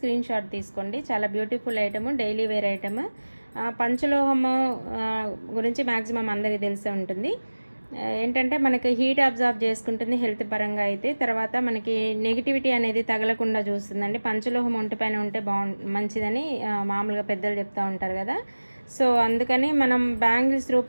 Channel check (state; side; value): inverted; both; correlation -1.00